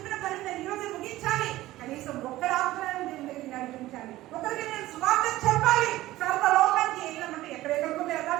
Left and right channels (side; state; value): left; quieter; 16.5 dB